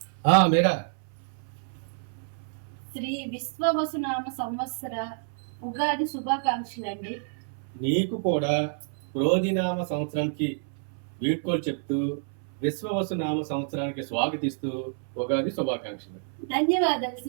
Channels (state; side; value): silent; left; 59 dB below the other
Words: మీరా శ్రీ విశ్వవసునామ సంవత్సర ఉగాది శుభాకాంక్షలు అండి. నీకు కూడా క్రోధినామ సంవత్సరానికి వీడ్కోలు చెప్తూ విశ్వవసునామ సంవత్సరానికి స్వాగతిస్తూ ఉగాది శుభాకాంక్షలు. ధన్యవాదాలు